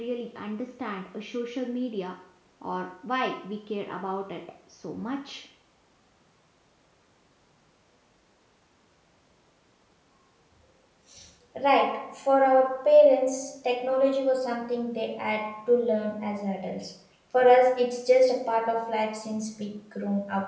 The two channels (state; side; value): identical; both; correlation 1.00